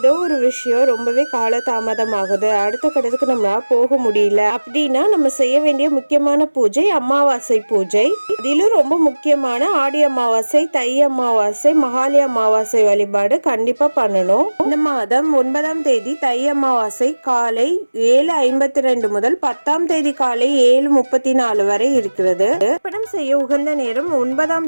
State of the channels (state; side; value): inverted; both; correlation -1.00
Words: ஒரு விஷயம் ரொம்பவே காலதாமதம் ஆகுது, அடுத்த கட்டத்துக்கு நம்ம போக முடியல அப்படின்னா நம்ம செய்ய வேண்டிய முக்கியமான பூஜை அமாவாசை பூஜை. அதிலும் ரொம்ப முக்கியமான ஆடி அமாவாசை, தை அமாவாசை, மகாலி அமாவாசை வழிபாடு கண்டிப்பா பண்ணணும். இந்த மாதம் 9ஆம் தேதி தை அமாவாசை காலை 7:52 முதல் 10ஆம் தேதி காலை 7:34 வரை இருக்கிறது. படம் செய்ய உகந்த நேரம்